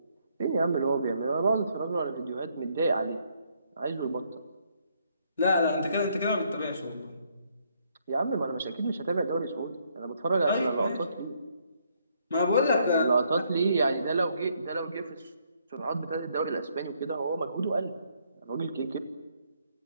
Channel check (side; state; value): both; inverted; correlation -0.71